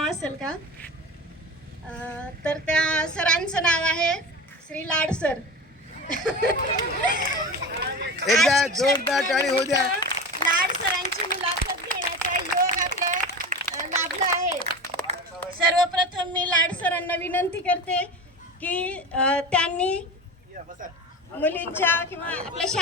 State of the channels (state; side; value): normal; both; correlation 0.29